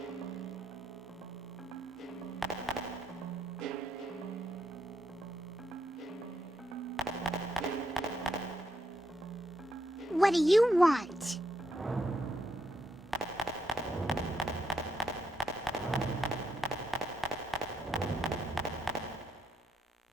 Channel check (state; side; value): normal; both; correlation 0.78